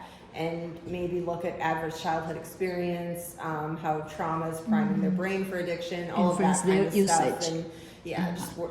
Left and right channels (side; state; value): both; identical; correlation 1.00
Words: and maybe look at adverse childhood experience, how trauma is priming their brain for addiction, all of that Influence kind their of stuff, usage. and yeah, just